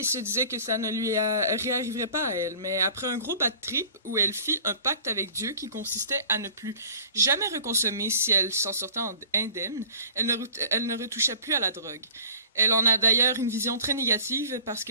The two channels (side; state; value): both; inverted; correlation -0.48